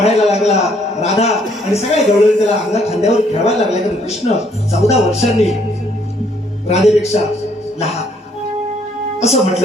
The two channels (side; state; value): both; normal; correlation 0.66